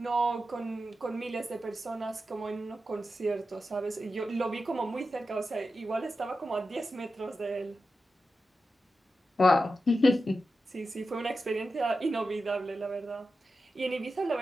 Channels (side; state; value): both; normal; correlation 0.91